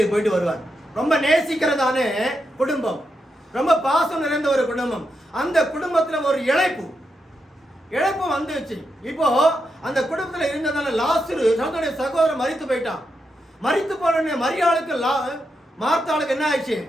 போயிட்டு வருவார். ரொம்ப நேசிக்கிறதான குடும்பம், ரொம்ப பாசம் நிறைந்த ஒரு குடும்பம். அந்த குடும்பத்துல ஒரு இழைப்பு வந்துச்சு. இப்போ அந்த குடும்பத்துல இருந்ததால லாசரு தன்னுடைய சகோதரன் மரித்து போயிட்டான். மரித்து போன மரியாளுக்கு மார்த்தாளுக்கு என்ன ஆயிடுச்சு?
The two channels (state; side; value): normal; both; correlation 0.85